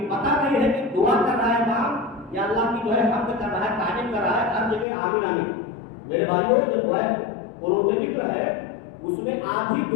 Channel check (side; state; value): right; drops out; at 4.9 s